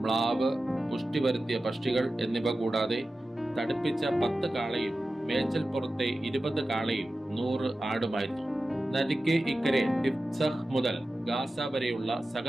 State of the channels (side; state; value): both; normal; correlation 0.94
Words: മ്ലാവ്, പുഷ്ടി വരുത്തിയ പക്ഷികൾ എന്നിവ കൂടാതെ തടിപ്പിച്ച 10 കാളയും മേച്ചൽ പുറത്തെ 20 കാളയും 100 ആടുമായിരുന്നു. നദിക്ക് ഇക്കരെ ടിഫ്സഹ് മുതൽ ഗാസ വരെയുള്ള